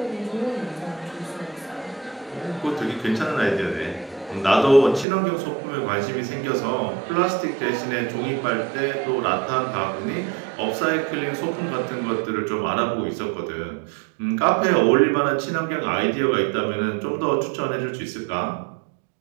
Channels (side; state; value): left; drops out; at 5.1 s